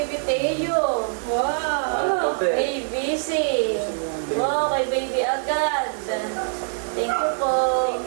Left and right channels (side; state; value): left; silent; digital silence